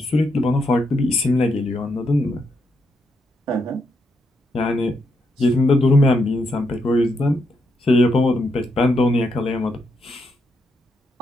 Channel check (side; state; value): both; normal; correlation 0.80